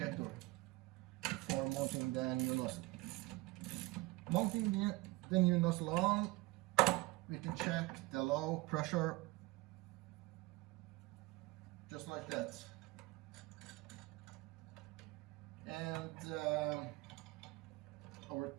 before mounting the new nozzle. Mounting the new nozzle on, we can check the low pressure just like that. And over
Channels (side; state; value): left; quieter; 21.8 dB